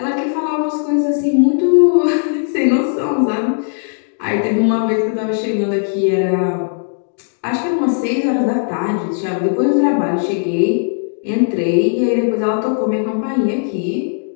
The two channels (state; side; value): silent; right; 64 dB below the other